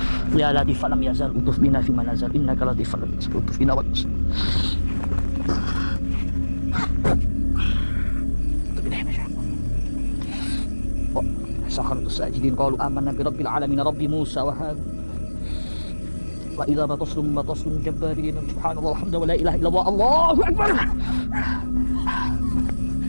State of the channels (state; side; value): inverted; both; correlation -1.00